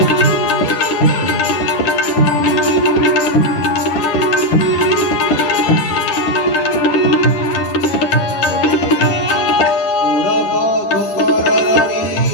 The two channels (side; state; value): right; late; 10 ms